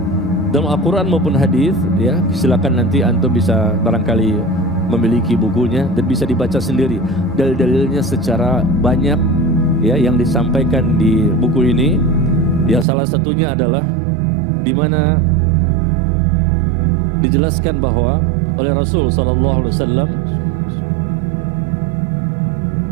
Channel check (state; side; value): drops out; left; at 12.9 s